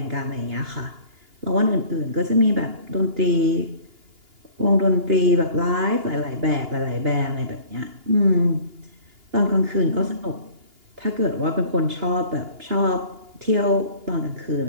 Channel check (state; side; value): late; left; 2.8 ms